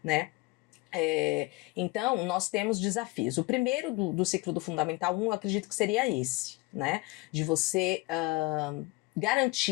né? Então, nós temos desafios. O primeiro do ciclo do Fundamental 1, eu acredito que seria esse, né? De você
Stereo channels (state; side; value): quieter; right; 23.3 dB